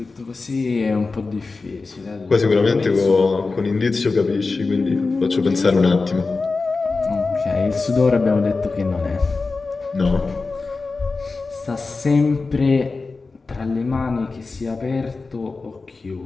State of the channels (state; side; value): quieter; right; 4.0 dB